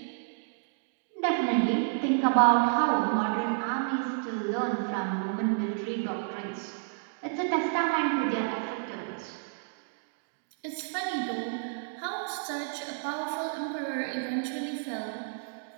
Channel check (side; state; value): left; silent; digital silence